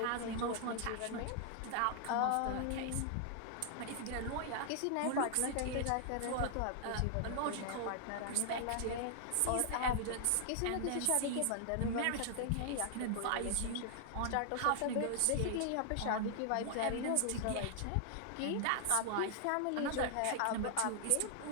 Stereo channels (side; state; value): both; different; correlation 0.00